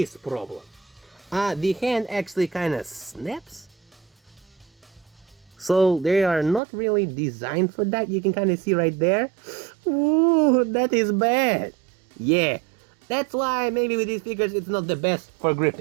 problem. The hand actually kind of snaps. So they are not really designed for that. You can kind of see right there. Ooh, that is bad. Yeah, that's why maybe with these figures it's not the best for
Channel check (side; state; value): left; drops out; at 6.6 s